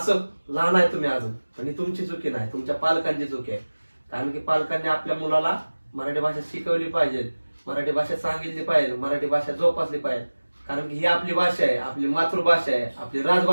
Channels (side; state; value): both; inverted; correlation -1.00